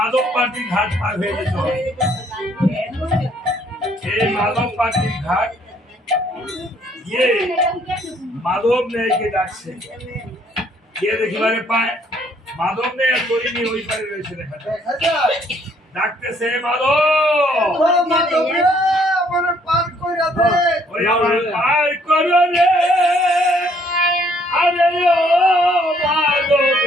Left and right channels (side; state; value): both; normal; correlation 0.65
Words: পার্টির ঘাট পার হয়ে যেতে হবে। এই মাধব পার্টির ঘাট গিয়ে মাধব ন্যায়কে ডাকছে, গিয়ে দেখিবারে পায় মাধব ন্যায় তরিনি ওই পারে রয়েছে, দেখা যায় ডাকতেছে মাধব। কইরা দে ওই আমার পার করো রে আরে ও মাধব